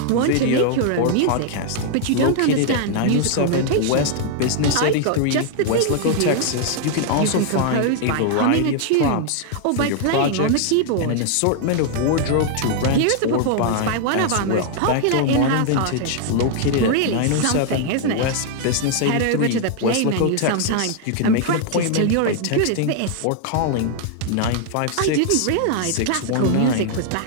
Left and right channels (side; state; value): both; different; correlation 0.00